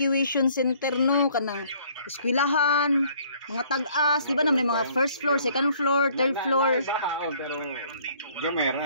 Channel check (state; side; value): inverted; both; correlation -0.60